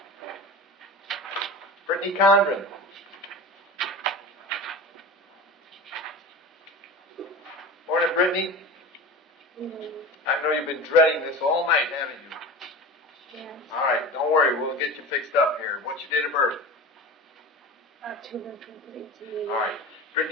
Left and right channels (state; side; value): normal; both; correlation 0.31